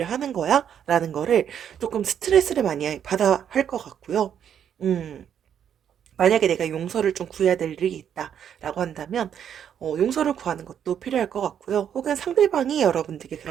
하는 거야? 라는 거를 조금 스트레스를 많이 받아 할 것 같고요. 음. 만약에 내가 용서를 좀 구해야 될 일이 있다라고 한다면 용서를 구하는 것도 필요할 것 같고요. 혹은 상대방이 여러분들께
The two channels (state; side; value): quieter; left; 8.9 dB